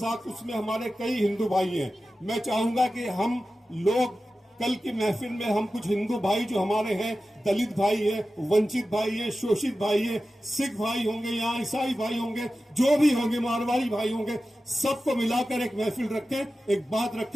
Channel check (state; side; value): normal; both; correlation 0.94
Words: اس میں ہمارے کئی ہندو بھائی ہیں۔ میں چاہوں گا کہ ہم لوگ کل کی محفل میں ہم کچھ ہندو بھائی جو ہمارے ہیں، دلت بھائی ہیں، ونچت بھائی ہیں، شوشت بھائی ہیں، سکھ بھائی ہوں گے، یہاں عیسائی بھائی ہوں گے، جو بھی ہوں گے، مارواڑی بھائی ہوں گے، سب کو ملا کر ایک محفل رکھیں، ایک بات